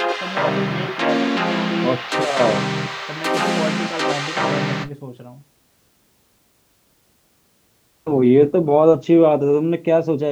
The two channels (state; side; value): identical; both; correlation 1.00